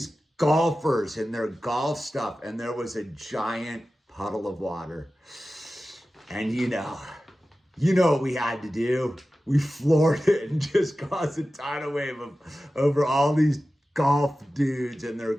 golfers in their golf stuff, and there was a giant puddle of water. And you know what we had to do? We floored it and just caused a tidal wave over all these golf dudes and their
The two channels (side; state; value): both; normal; correlation 0.95